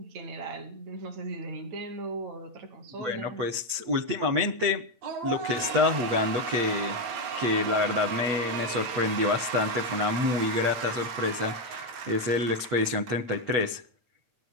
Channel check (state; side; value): late; left; 8.7 ms